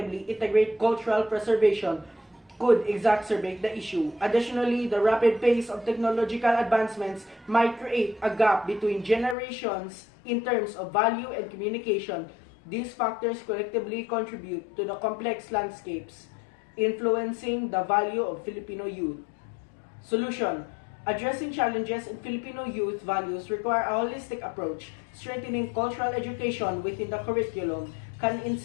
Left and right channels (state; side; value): drops out; right; at 9.3 s